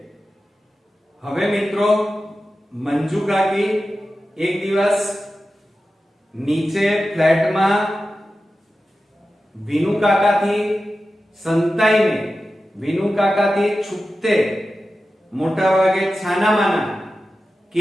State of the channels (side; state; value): both; normal; correlation 0.93